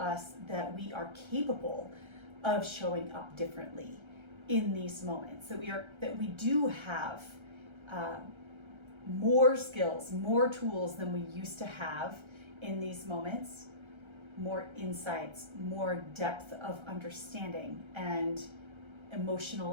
that we are capable of showing up differently in these moments, that we do have more skills, more tools than we used to have in these moments, more insights, more depth of understanding and emotional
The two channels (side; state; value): left; late; 1.3 ms